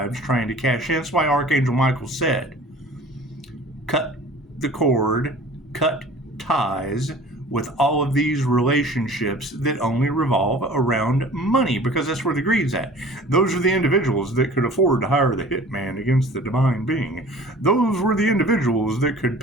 trying to cash in, that's why Archangel Michael said, cut the cord, cut ties with all of these relationships that only revolve around money, because that's where the greed's at. Those are the individuals that could afford to hire the hitman against the divine being. Those were the individuals that could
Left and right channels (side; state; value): both; normal; correlation 0.45